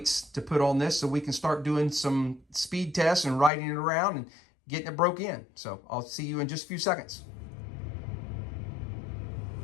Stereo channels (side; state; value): right; drops out; at 3.5 s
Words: to put on this so we can start doing some speed tests and riding it around and getting it broke in. So I'll see you in just a few seconds.